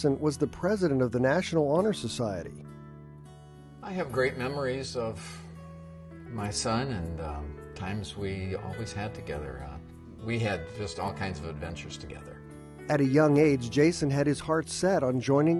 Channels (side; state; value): both; identical; correlation 1.00